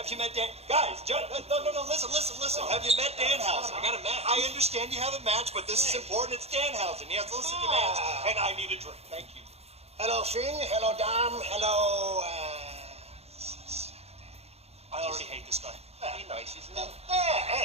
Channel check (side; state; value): left; late; 0.30 ms